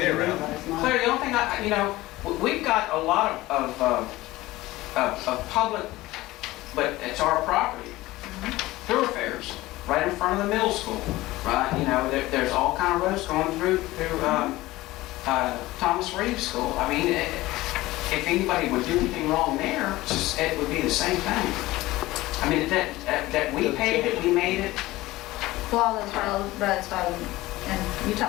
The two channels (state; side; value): quieter; right; 18.2 dB